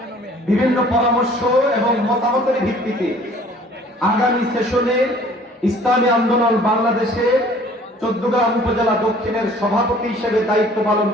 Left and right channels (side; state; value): both; normal; correlation 0.53